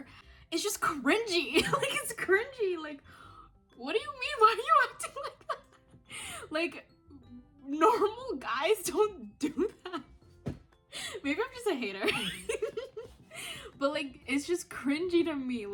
It's just cringy. Like, it's cringy. Like, what do you mean? Why are you acting like that? Like, normal guys don't do that. Maybe I'm just a hater. But like, it's just cringy to me.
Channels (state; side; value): identical; both; correlation 1.00